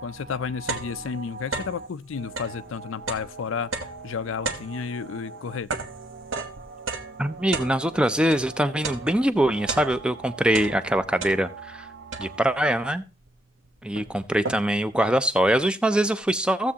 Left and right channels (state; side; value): normal; both; correlation 0.73